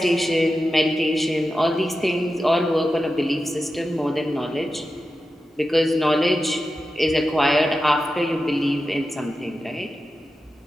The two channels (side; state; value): both; normal; correlation 0.91